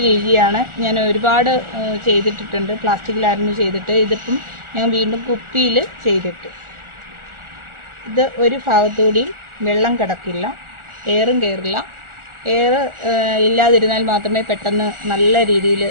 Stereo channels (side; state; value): left; late; 1.4 ms